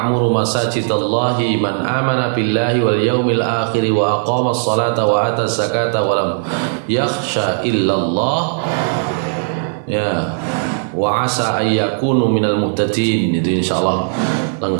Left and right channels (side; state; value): left; silent; 59 dB below the other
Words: masajidallahi man amana billahi wal yaumil akhir wa aqamas salata wa ataz zakata wa lam yakhsha illallah, ya, wa asa ayyakunu minal muhtadin. Itu insyaallah